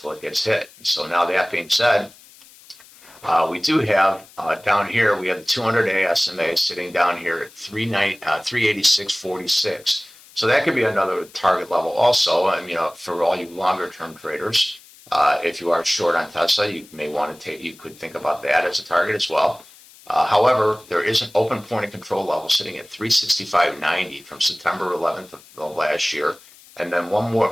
it gets hit. So now that being said, we do have down here, we have the 200-day SMA sitting down here at 386.46. So that could be another target level also. For all you longer term traders, if you are short on Tesla, you may want to you could think about that as a target as well. However, there is an open point of control level sitting at 365.90 from September 11th of last year. And then one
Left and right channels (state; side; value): noise; left; hiss, 24 dB below the sound